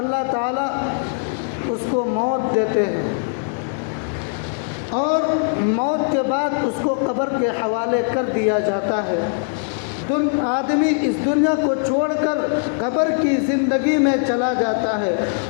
تعالیٰ اس کو موت دیتے ہیں، اور موت کے بعد اس کو قبر کے حوالے کر دیا جاتا ہے۔ آدمی اس دنیا کو چھوڑ کر قبر کی زندگی میں چلا جاتا ہے،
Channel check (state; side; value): silent; right; 65 dB below the other